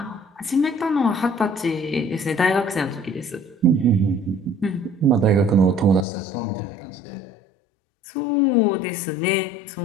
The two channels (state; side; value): drops out; right; at 6.1 s